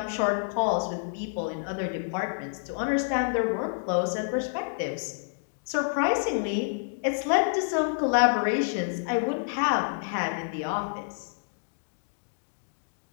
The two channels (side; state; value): right; silent; digital silence